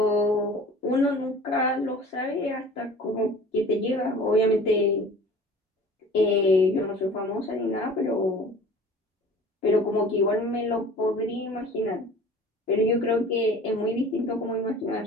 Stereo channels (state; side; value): normal; both; correlation 0.44